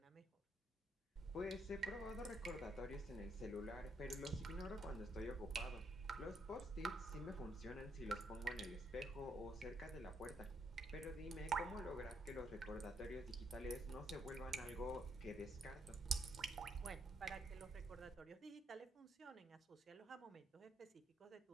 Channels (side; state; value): both; normal; correlation 0.74